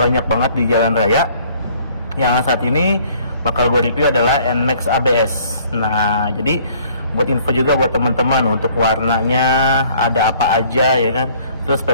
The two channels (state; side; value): inverted; both; correlation -0.58